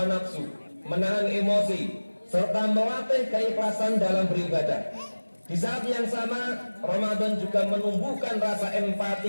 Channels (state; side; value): inverted; both; correlation -1.00